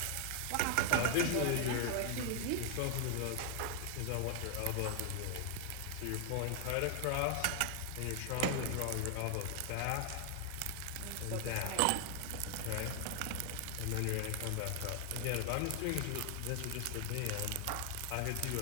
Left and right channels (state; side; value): different; both; correlation 0.00